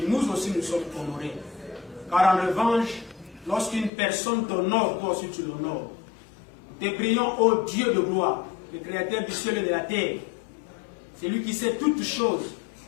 nous aussi nous sommes honorés. Car en revanche, lorsqu'une personne t'honore, toi aussi tu l'honores. Nous te prions, ô Dieu de gloire, le Créateur du ciel et de la terre. C'est lui qui sait toutes choses.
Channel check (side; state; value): right; drops out; at 3.9 s